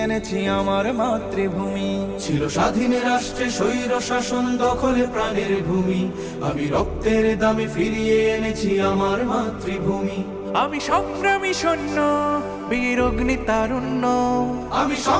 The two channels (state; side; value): identical; both; correlation 1.00